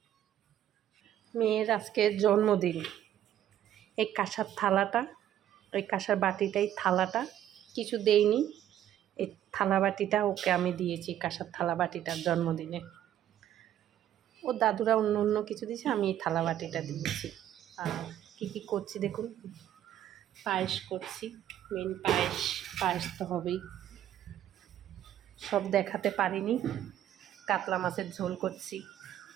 মেয়ের আজকে জন্মদিন। এই কাঁসার থালাটা, ওই কাঁসার বাটিটাই থালাটা, কিছু দেইনি। এই থালা বাটিটা ওকে আমি দিয়েছি, কাঁসার থালা বাটিটার জন্মদিনে। ও দাদুরা অন্য অন্য কিছু দিয়েছে, আমি এই থালা বাটিটা দিয়েছি। আর কী করছি দেখুন, পায়েস করছি। মেন পায়েস তো হবেই। সব দেখাতে পারিনি। কাতলা মাছের ঝোল করছি,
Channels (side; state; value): left; quieter; 11.5 dB